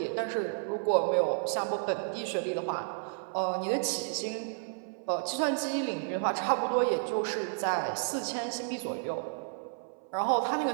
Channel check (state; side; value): silent; left; 56 dB below the other